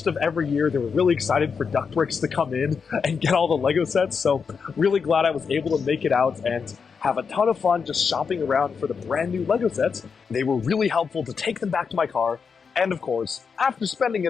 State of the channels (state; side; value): quieter; right; 5.8 dB